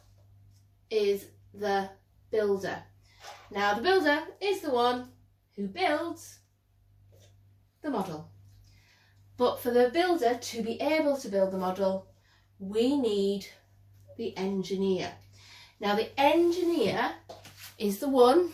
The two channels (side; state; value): both; identical; correlation 1.00